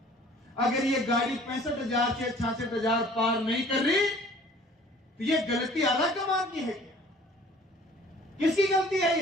अगर ये गाड़ी 65,000 से 66,000 पार नहीं कर रही तो ये गलती आला कमान की है क्या? किसकी गलती है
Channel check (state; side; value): normal; both; correlation 0.51